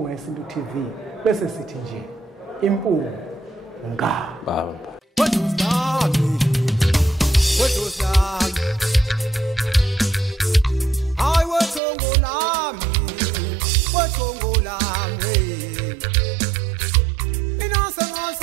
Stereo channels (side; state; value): left; drops out; at 11.8 s